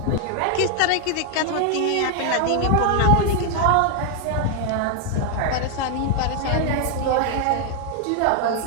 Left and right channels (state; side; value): different; both; correlation 0.00